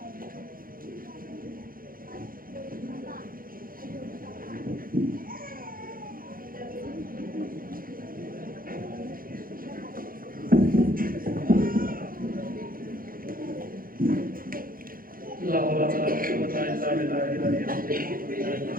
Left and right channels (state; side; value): late; left; 0.41 ms